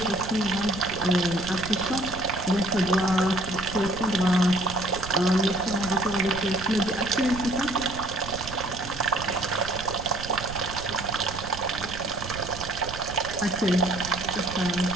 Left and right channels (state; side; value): noise; right; rumble, 11 dB below the sound